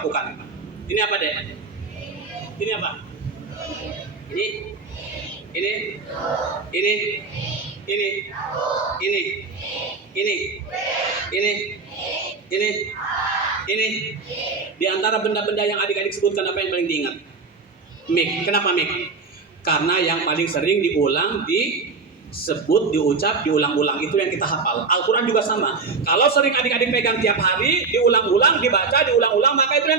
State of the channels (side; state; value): left; quieter; 4.5 dB